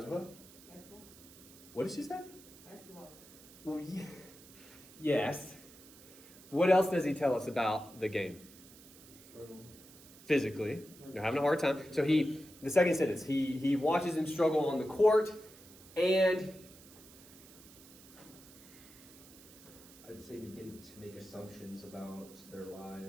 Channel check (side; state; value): right; noise; hiss, 21 dB below the sound